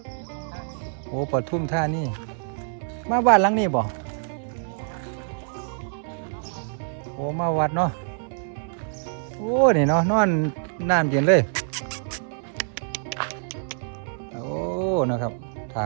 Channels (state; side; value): silent; left; digital silence